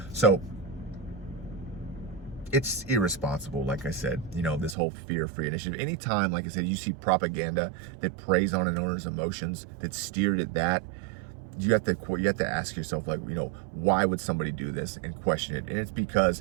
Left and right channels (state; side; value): drops out; left; at 4.8 s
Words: So it's irresponsible, like I said, this whole fear-free initiative. Anytime, like I said, you see propaganda that preys on an owner's emotions, that's steered at that, you have to ask yourself, like, why would somebody do this, and question it. And it's because